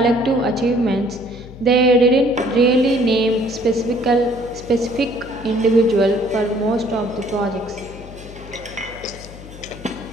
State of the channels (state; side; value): noise; left; hum, 17 dB below the sound